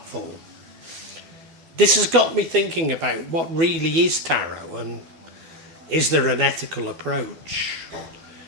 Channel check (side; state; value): left; late; 12 ms